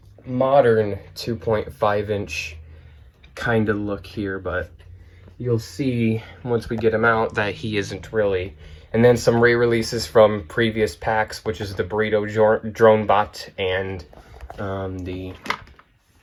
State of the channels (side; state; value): both; identical; correlation 1.00